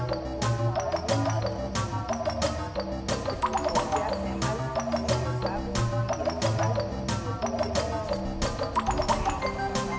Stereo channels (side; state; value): both; identical; correlation 1.00